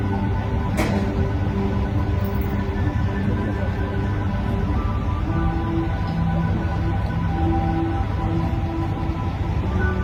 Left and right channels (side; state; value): both; identical; correlation 1.00